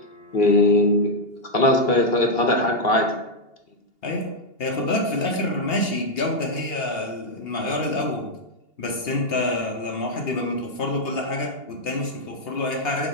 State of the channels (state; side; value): late; right; 2.8 ms